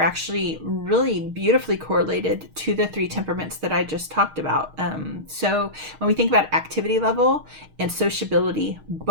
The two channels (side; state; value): left; late; 6.4 ms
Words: really beautifully correlated to the 3 temperaments that I just talked about. So when we think about activity level and sociability,